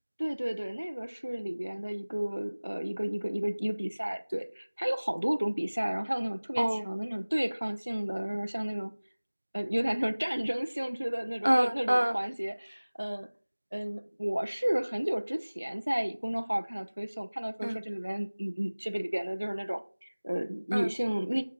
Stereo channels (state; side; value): inverted; both; correlation -1.00